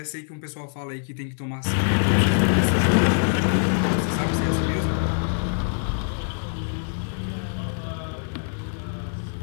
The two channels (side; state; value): right; silent; digital silence